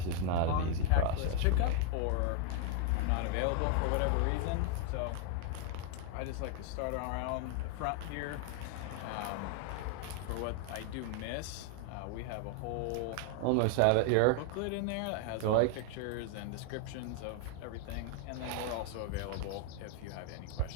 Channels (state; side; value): different; both; correlation 0.00